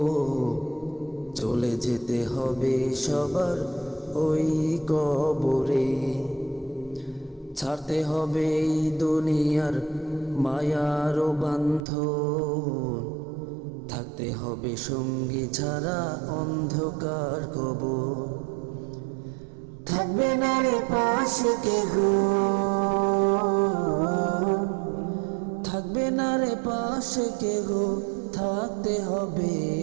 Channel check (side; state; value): left; drops out; at 11.9 s